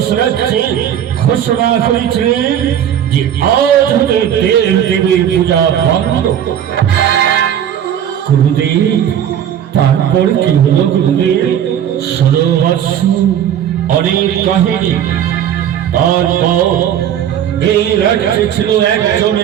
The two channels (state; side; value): quieter; left; 9.8 dB